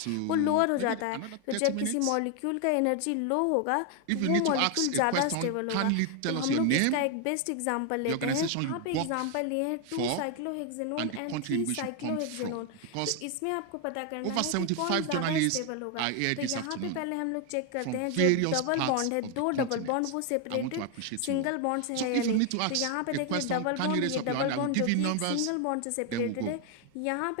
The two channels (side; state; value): both; different; correlation 0.01